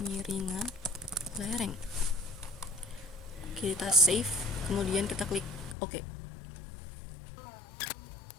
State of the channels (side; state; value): right; drops out; at 5.8 s